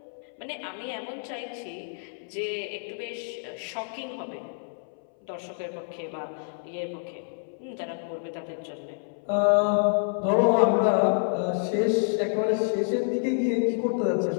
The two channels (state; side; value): silent; right; 59 dB below the other